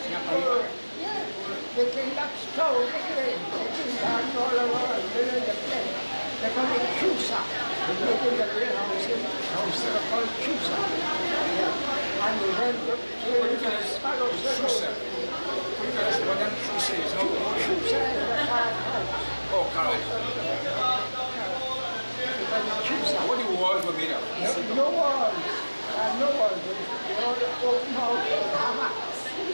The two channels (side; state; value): both; inverted; correlation -1.00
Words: they came up stove again, they came down all over, they were in the place. They call it Chusa. They live in the warehouse in they call it Chusa. And we went to Sparrow Circle. What that Chusa is? Chusa is the carrot house. Oh, carrot. What the walls were made of? No walls. No walls. They all open out hammocks.